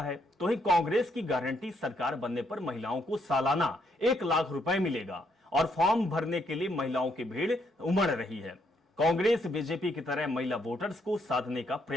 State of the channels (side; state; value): both; normal; correlation 0.74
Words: है। तो ही कांग्रेस की गारंटी सरकार बनने पर महिलाओं को सालाना 1 लाख रुपए मिलेगा और फॉर्म भरने के लिए महिलाओं की भीड़ उमड़ रही है। कांग्रेस बीजेपी की तरह महिला वोटर्स को साधने का